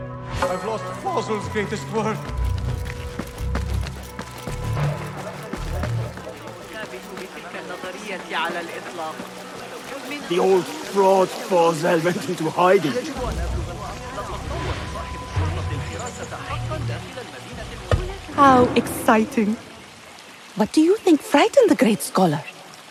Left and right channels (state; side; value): identical; both; correlation 1.00